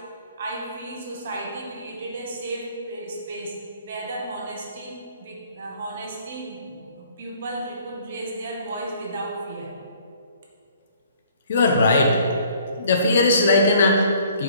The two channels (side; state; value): both; inverted; correlation -0.58